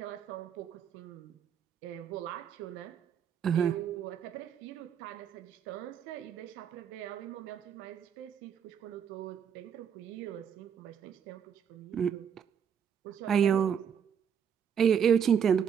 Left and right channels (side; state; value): left; quieter; 7.9 dB